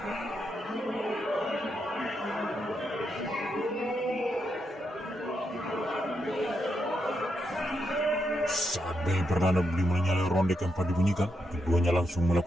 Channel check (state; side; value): normal; both; correlation 0.82